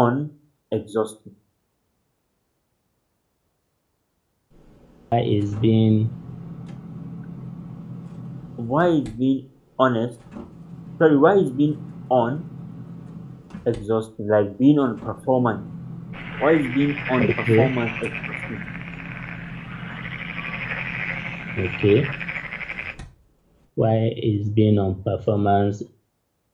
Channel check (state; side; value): identical; both; correlation 1.00